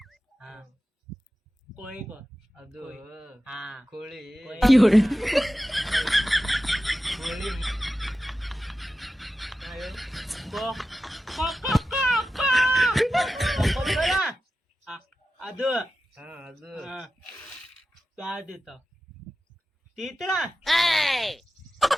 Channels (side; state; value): both; normal; correlation 0.93